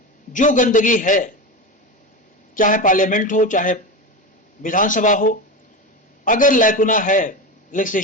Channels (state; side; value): normal; both; correlation 0.21